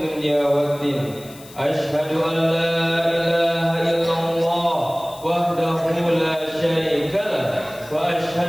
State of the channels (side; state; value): left; noise; hiss, 20 dB below the sound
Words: waddin. Ashhadu an la ilaha illallah wahdahu la syarika lah, wa